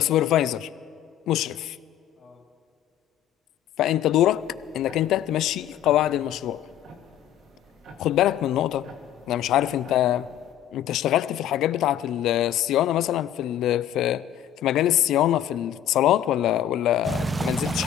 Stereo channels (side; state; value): right; quieter; 10.9 dB